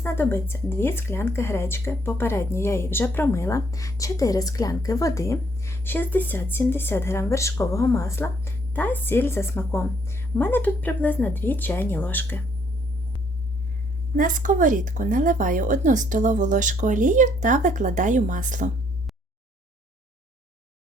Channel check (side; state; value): both; normal; correlation 0.67